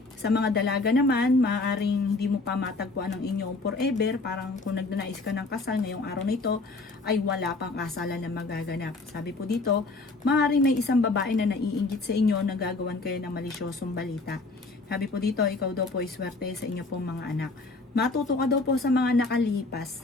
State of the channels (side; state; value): right; quieter; 3.5 dB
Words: Sa mga dalaga naman, maaaring hindi mo pa matagpuan ang inyong forever, parang kung nagnanais ka ng kasal ngayong araw na ito, ay wala pang kasalan na magaganap. Sabi po dito, maaaring may isang babae na naiinggit sa inyo na gagawan kayo ng malisyosong balita. Sabi po dito, ikaw daw po ay swerte sa inyo pong mga anak. Matuto ka daw po sa mga